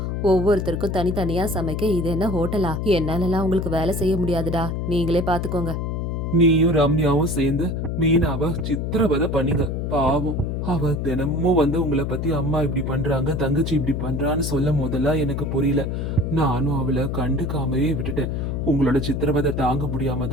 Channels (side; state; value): left; noise; hum, 2 dB below the sound